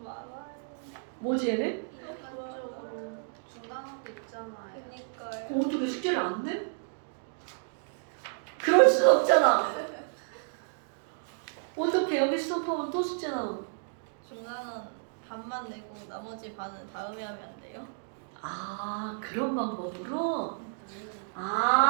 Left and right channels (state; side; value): silent; left; digital silence